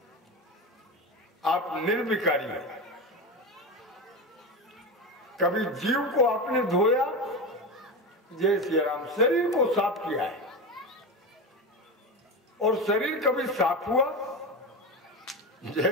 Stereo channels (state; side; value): normal; both; correlation 0.21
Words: आप निर्विकारी हैं। कभी जीव को आपने धोया? जय श्री राम। शरीर को साफ किया है। और शरीर कभी साफ हुआ?